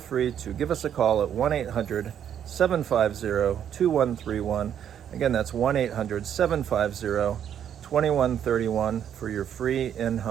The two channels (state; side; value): quieter; left; 9.3 dB